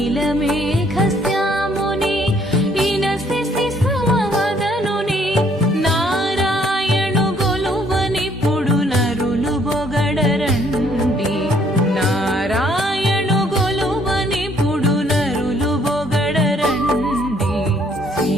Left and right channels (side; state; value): both; normal; correlation 0.65